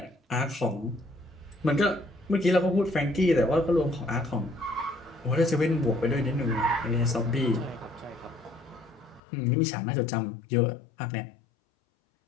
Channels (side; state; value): right; drops out; at 9.2 s